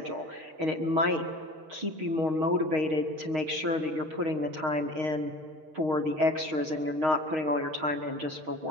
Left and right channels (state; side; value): late; left; 6.4 ms